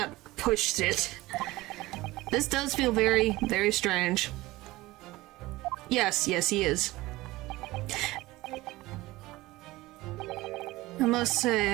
push it. This does feel very, very strange. Yes, he is. I must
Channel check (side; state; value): left; quieter; 19.1 dB